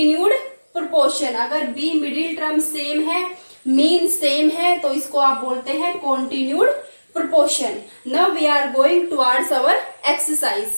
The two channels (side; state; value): both; inverted; correlation -1.00